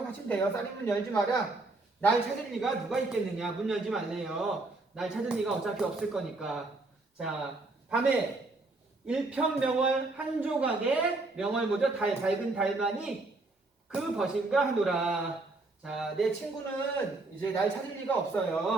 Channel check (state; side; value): quieter; left; 3.2 dB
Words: 돼요. 쌀인문 열지 마라. 날 찾을 리가 누가 있겠느냐. 문 열지 말래요. 날 찾을 리가 어차피 없을 거니까. 자, 밤에 일편명월 한 조각에 명월 뭐죠? 밝은 달만이 그 벗인가 하노라. 자, 내 친구는 이제 날 찾을 리가